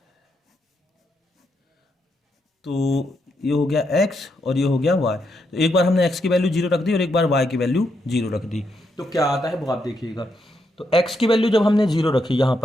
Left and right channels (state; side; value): normal; both; correlation 0.80